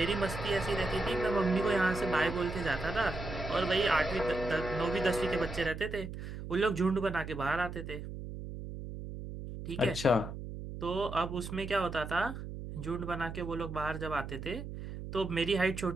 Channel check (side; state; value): right; noise; hum, 9 dB below the sound